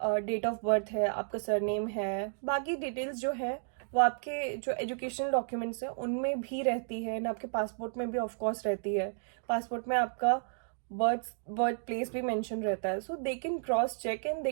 डेट ऑफ बर्थ है, आपका सरनेम है, बाकी डिटेल्स जो है वो आपके जो एजुकेशनल डॉक्यूमेंट्स हैं उनमें भी रहती है, एंड आपके पासपोर्ट में भी ऑफ कोर्स रहती है। पासपोर्ट में आपका बर्थ प्लेस भी मेंशन रहता है, so they can cross check and they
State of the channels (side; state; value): left; silent; digital silence